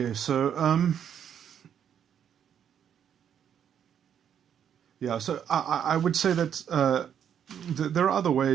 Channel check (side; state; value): left; quieter; 8.8 dB